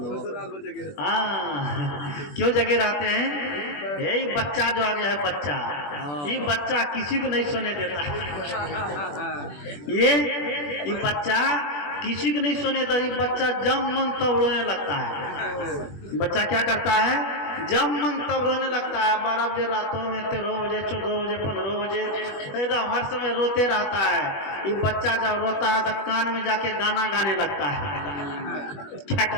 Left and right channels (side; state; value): right; late; 21 ms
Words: हाँ क्यों जगे रहते हैं? यही बच्चा जो आ गया है, बच्चा, ये बच्चा किसी को नहीं सोने देता। ये बच्चा किसी को नहीं सोने देता। ये बच्चा जब मन तब रोने लगता है। बच्चा क्या करता है? जब मन तब रोने लगता है। 12 बजे रातों में, 13 बजे, 14 बजे, 15 बजे, एकदम हर समय रोते रहता है। ये बच्चा जब रोता है तो कान में जाके गाना गाने लगता है। क्या